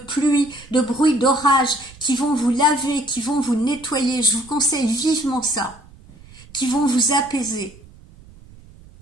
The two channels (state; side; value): noise; right; rumble, 23 dB below the sound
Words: de bruit d'orage, qui vont vous laver, qui vont vous nettoyer, je vous conseille vivement ça, qui vont vous apaiser.